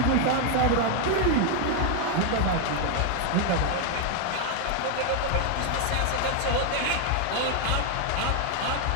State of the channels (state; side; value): different; both; correlation 0.00